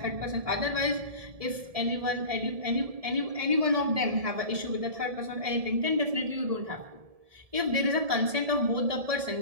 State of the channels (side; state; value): left; late; 1.7 ms